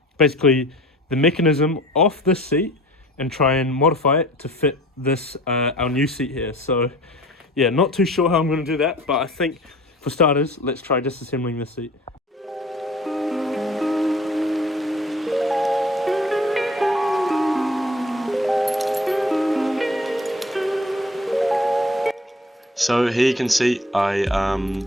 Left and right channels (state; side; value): normal; both; correlation 0.47